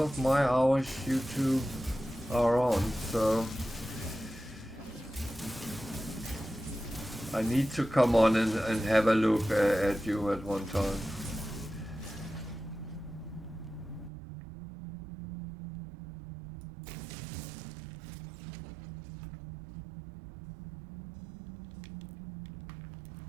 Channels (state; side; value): drops out; left; at 14.1 s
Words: of my hours you two are on, so I need to come on and have a look at you at one time.